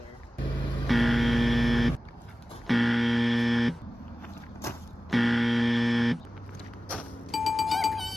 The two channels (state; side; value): normal; both; correlation 0.96